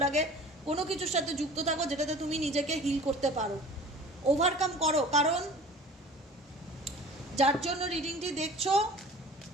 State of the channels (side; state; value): both; normal; correlation 0.43